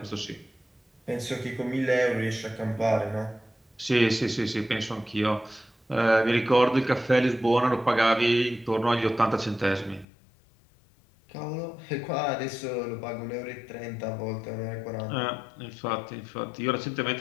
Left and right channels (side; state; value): right; drops out; at 10.1 s